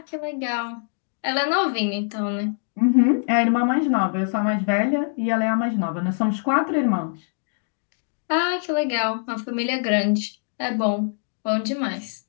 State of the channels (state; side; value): silent; right; digital silence